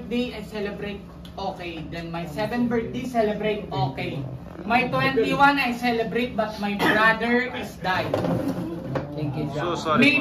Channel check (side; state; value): both; identical; correlation 1.00